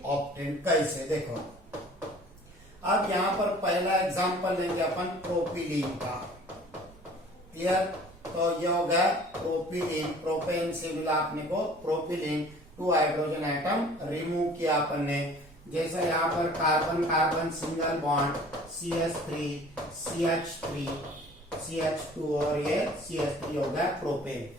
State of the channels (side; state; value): right; noise; rumble, 24 dB below the sound